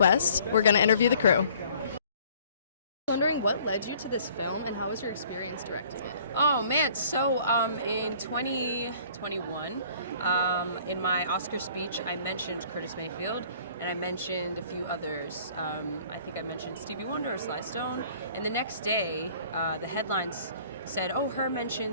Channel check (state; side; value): inverted; both; correlation -0.55